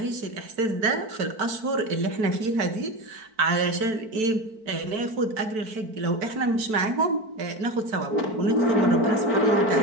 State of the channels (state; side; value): late; left; 4.6 ms